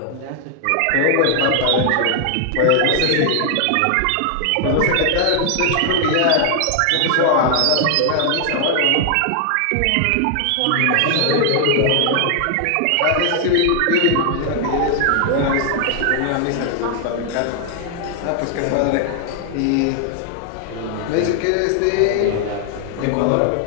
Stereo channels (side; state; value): both; different; correlation 0.00